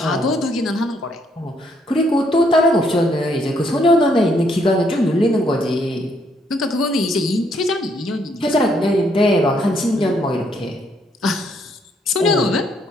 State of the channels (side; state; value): both; normal; correlation 0.71